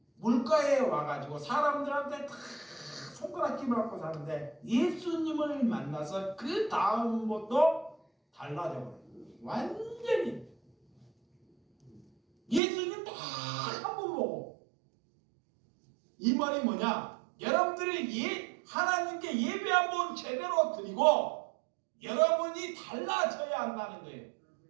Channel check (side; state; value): left; drops out; at 12.6 s